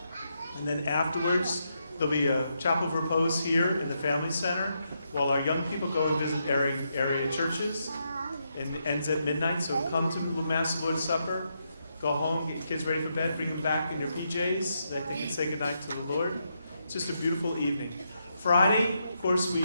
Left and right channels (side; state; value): both; inverted; correlation -0.81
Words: And then afterwards, there'll be a chapel of repose here in the Family Center while our young people go and visit area churches. And it ends at midnight, so come to the Mass of the Lord's Supper. Go home, get your kids ready for bed, bring them back in your PJs so that they can say goodnight to the Lord. It's just a beautiful evening. Friday, of course,